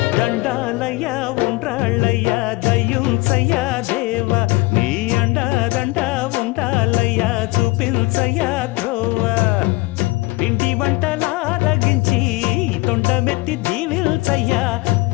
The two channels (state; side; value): quieter; right; 22.5 dB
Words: దండాలయ్యా ఉండ్రాళ్ళయ్యా దయ్యుంచయ్యా దేవ నీ అండ ఉండాలయ్యా చూపించయ్యా త్రోవ పిండి వంటలారగించి తొండమెత్తి దీవిల్చయ్యా